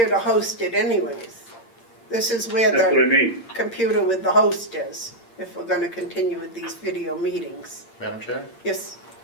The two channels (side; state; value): right; late; 8.7 ms